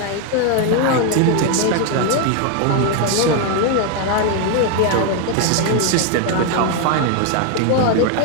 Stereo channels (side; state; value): both; different; correlation 0.01